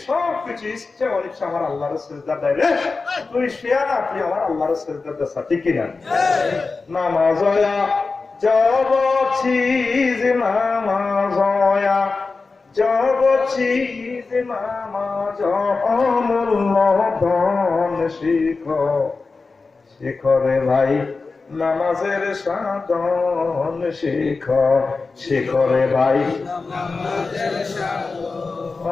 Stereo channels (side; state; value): right; quieter; 4.1 dB